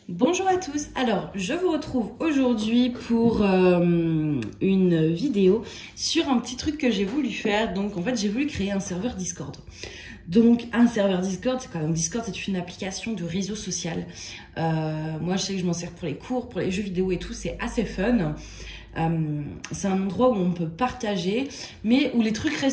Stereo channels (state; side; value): identical; both; correlation 1.00